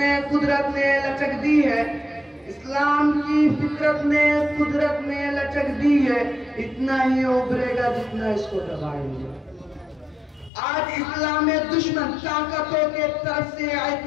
قدرت نے لچک دی ہے اسلام کی فطرت نے قدرت نے لچک دی ہے اتنا ہی ابھرے گا جتنا اس کو دبائیں گے آج اسلام میں دشمن طاقتوں کے طرف سے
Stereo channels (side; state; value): right; drops out; at 10.5 s